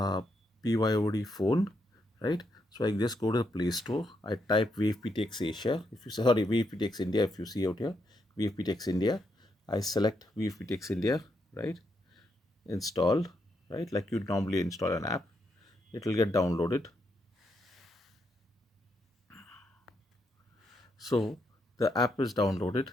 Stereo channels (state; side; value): normal; both; correlation 0.79